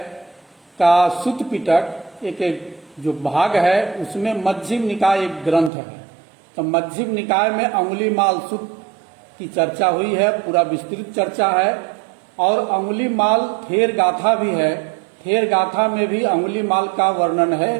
का सुत्त पिटक एक जो भाग है उसमें मध्यम निकाय एक ग्रंथ है। तो मध्यम निकाय में अंगुलीमाल सुत्त की चर्चा हुई है, पूरा विस्तृत चर्चा है। और अंगुलीमाल थेर गाथा भी है, थेर गाथा में भी अंगुलीमाल का वर्णन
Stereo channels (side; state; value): left; drops out; at 5.7 s